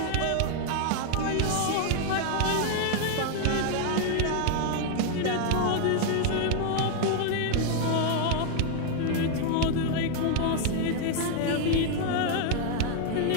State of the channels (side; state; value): both; different; correlation 0.00